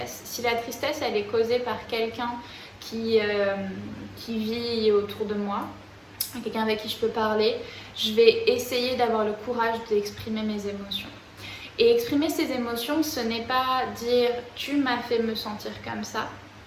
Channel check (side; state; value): both; identical; correlation 1.00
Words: Si la tristesse elle est causée par quelqu'un qui vit autour de moi, quelqu'un avec qui je peux parler, je vais essayer d'avoir le courage d'exprimer mes émotions. Et exprimer ses émotions, ce n'est pas dire « tu m'as fait me sentir comme ça